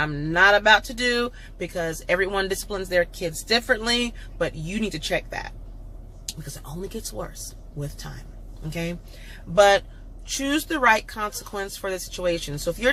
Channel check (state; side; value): identical; both; correlation 1.00